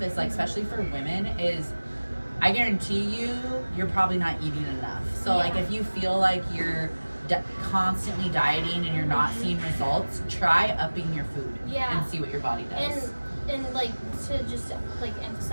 is like, especially for women, is I guarantee you're probably not eating enough. So like if you feel like you're constantly dieting and you're not seeing results, try upping your food and see what your body does. And like to just like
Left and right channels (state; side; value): inverted; both; correlation -1.00